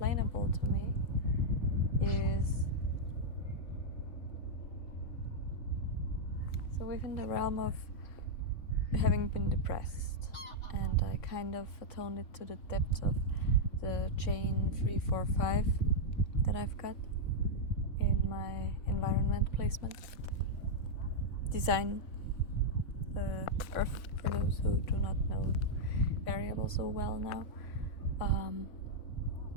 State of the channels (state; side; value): late; right; 3.6 ms